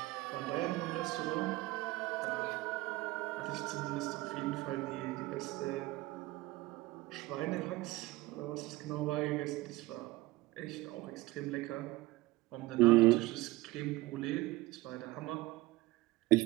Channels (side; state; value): left; quieter; 19.5 dB